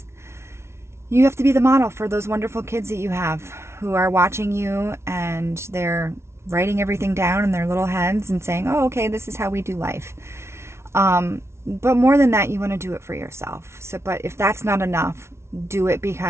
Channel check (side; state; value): left; late; 0.13 ms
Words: you have to be the model for those wonderful kids that you have who are watching you, and they're writing everything down in their little heads and saying, oh, okay, this is how we do life. But more than that, you want to do it for yourself. But if that's not enough, do it,